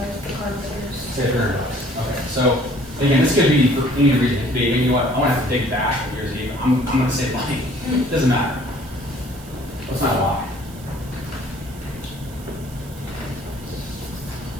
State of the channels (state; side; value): noise; right; hiss, 20 dB below the sound